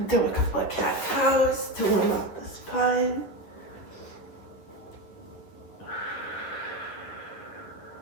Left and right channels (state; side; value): late; right; 10 ms